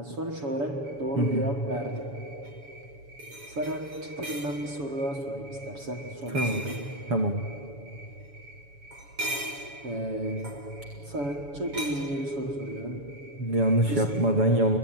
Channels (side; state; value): left; late; 7.1 ms